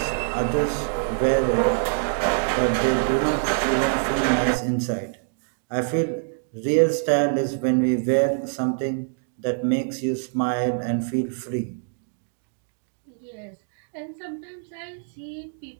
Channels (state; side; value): silent; left; digital silence